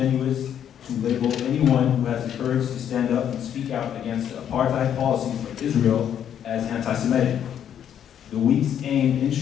to label anyone who has the courage to stand up and speak out against the apartheid policies of Israel as anti-Semitic. The week's aim, in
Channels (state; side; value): quieter; right; 9.4 dB